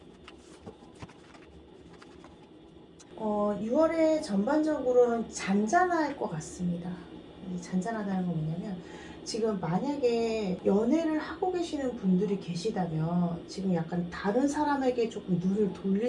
6월에 전반적으로는 잔잔할 것 같습니다. 이 잔잔하다는 건 뭐냐면 지금 만약에 연애를 하고 계시는 분들이 계시다면 지금 약간 다른 사람에게 조금 눈을 돌릴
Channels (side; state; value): both; identical; correlation 1.00